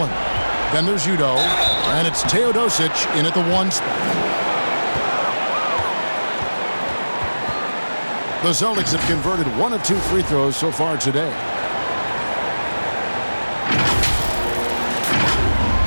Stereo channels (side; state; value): both; inverted; correlation -1.00